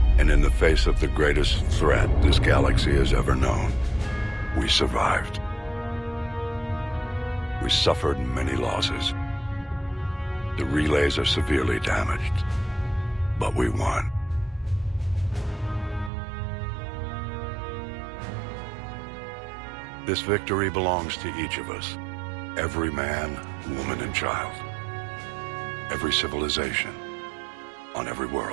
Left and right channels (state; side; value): drops out; left; at 16.1 s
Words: and in the face of the greatest threat this galaxy has ever known, we survived. We suffered many losses. The relays are severely damaged, but we won. This victory belongs to each of us. Every man, woman, and child. Every civilization. On every